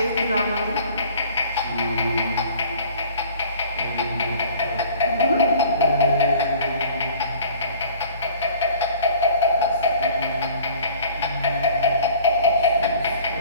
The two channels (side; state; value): both; inverted; correlation -0.49